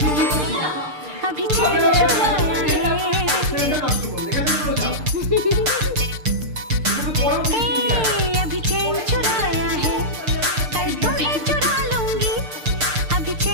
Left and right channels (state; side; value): late; left; 6.6 ms